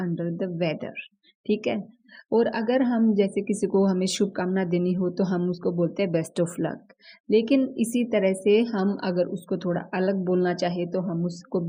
the weather. ठीक है। और अगर हम जैसे किसी को हमें शुभकामना देनी हो तो हम उसको बोलते हैं बेस्ट ऑफ लक। लेकिन इसी तरह से हम अगर उसको थोड़ा अलग बोलना चाहे तो हम उसको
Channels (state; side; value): identical; both; correlation 1.00